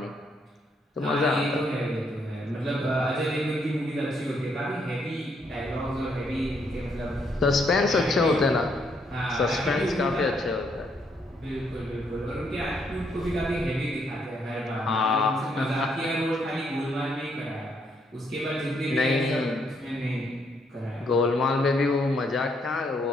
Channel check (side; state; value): both; normal; correlation 0.73